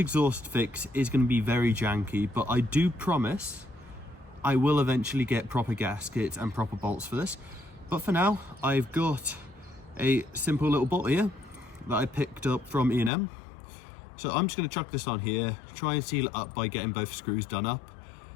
fix is going to be very janky, but I do promise I will eventually get proper gaskets and proper bolts for this. But for now, I've got a simple little bolt here that I picked up from E&M. So I'm just going to chuck this on here, try and seal it up by getting both screws done up,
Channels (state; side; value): drops out; right; at 13.1 s